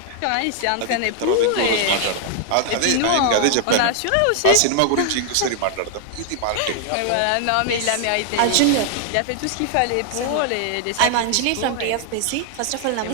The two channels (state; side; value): different; both; correlation 0.00